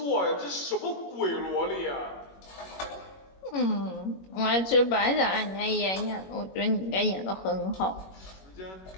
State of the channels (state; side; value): late; right; 21 ms